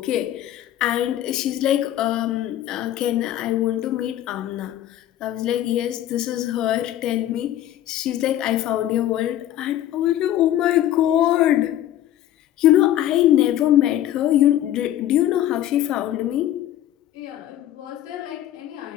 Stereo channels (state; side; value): quieter; right; 12.5 dB